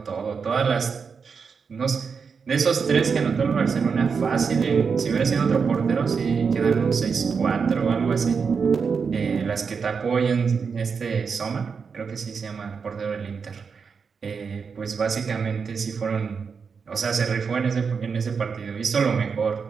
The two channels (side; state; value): left; quieter; 5.7 dB